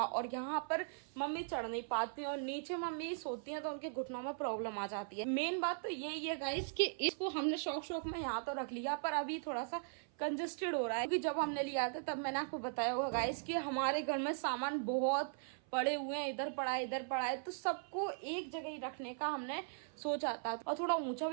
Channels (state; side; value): silent; left; 52 dB below the other